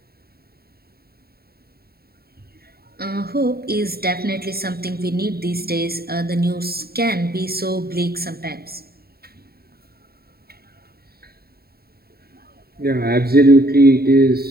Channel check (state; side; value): late; left; 0.45 ms